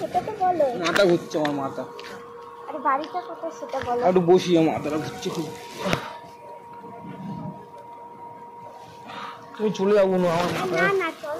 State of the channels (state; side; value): identical; both; correlation 1.00